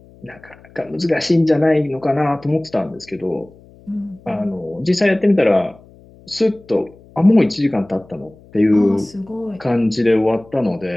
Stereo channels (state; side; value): noise; left; hum, 25 dB below the sound